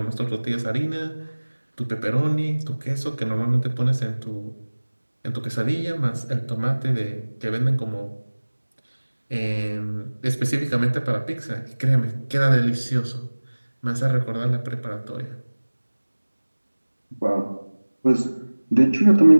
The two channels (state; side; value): inverted; both; correlation -1.00